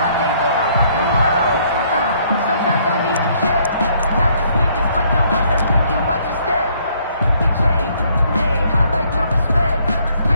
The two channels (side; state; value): both; inverted; correlation -0.66